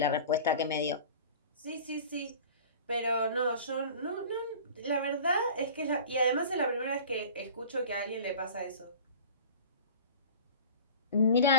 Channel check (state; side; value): inverted; both; correlation -0.40